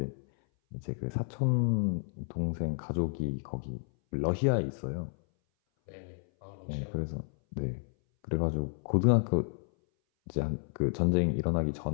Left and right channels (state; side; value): silent; right; 57 dB below the other